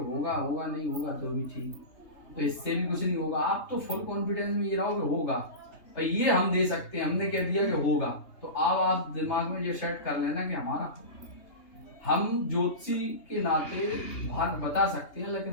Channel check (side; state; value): right; late; 3.3 ms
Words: होगा नहीं होगा तो भी ठीक, तो इससे भी कुछ नहीं होगा। आप तो फुल कॉन्फिडेंस में ये रहो कि होगा, पर ये हम दे सकते हैं, हमने कह दिया कि होगा, तो अब आप दिमाग में ये सेट कर लेना कि हमारा, हम ज्योतिषी के नाते भाग बता सकते हैं,